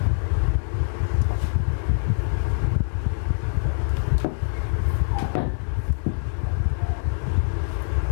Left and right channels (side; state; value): right; silent; digital silence